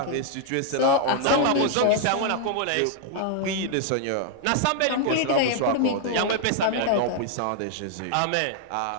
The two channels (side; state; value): both; different; correlation 0.00